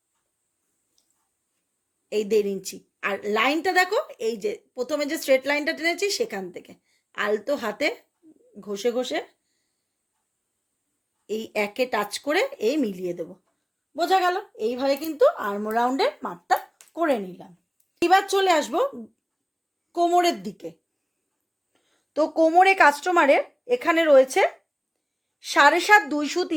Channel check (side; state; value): both; identical; correlation 1.00